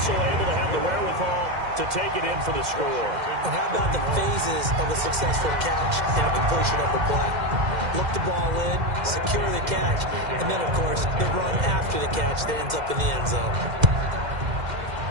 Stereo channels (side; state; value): left; late; 2.1 ms